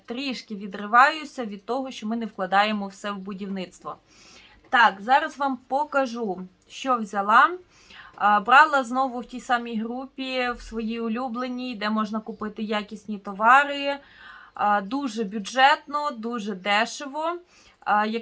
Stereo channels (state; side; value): identical; both; correlation 1.00